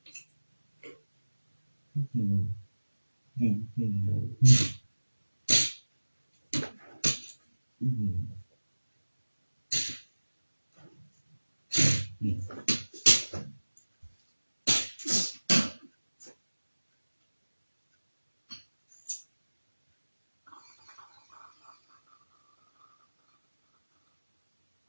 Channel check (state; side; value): inverted; both; correlation -1.00